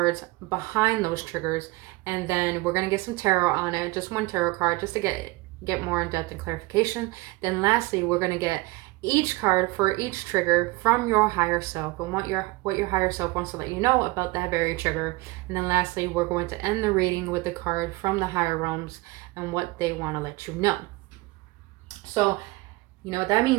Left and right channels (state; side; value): quieter; left; 21.6 dB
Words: behind those triggers, and then we're going to get some tarot on it, just 1 tarot card, just to get more in depth and clarification. Then lastly, we're going to get each card for each trigger from your higher self and what your higher self wants to let you know about that very trigger. And then lastly, we're going to end the reading with the card from the higher realms and what they want to let you know. So you know what that